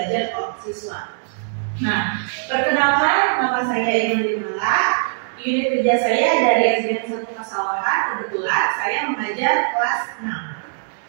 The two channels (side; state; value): left; silent; digital silence